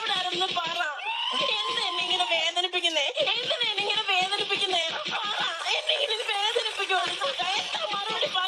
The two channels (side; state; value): both; identical; correlation 1.00